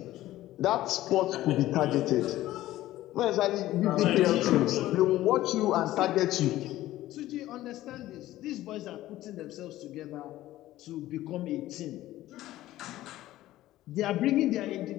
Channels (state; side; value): quieter; right; 15.2 dB